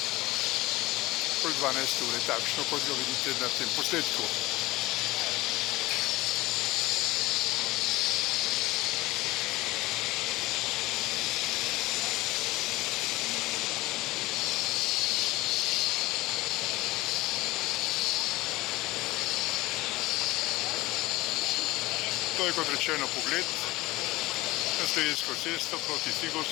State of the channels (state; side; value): quieter; right; 19.7 dB